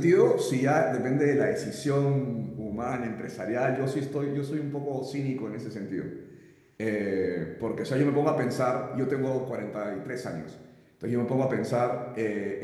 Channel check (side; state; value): both; identical; correlation 1.00